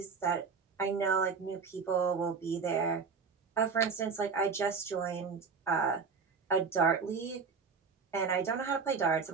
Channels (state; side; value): quieter; left; 5.3 dB